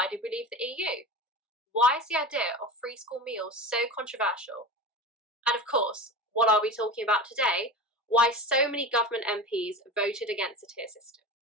did we leave the EU? Why is the idea of free school meals so controversial? And of course, what are we talking about today? Why so many government MPs voted against the tier system.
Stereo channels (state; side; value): normal; both; correlation 0.28